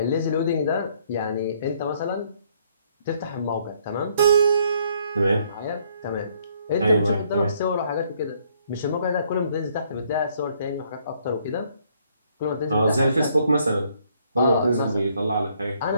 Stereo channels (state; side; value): inverted; both; correlation -0.67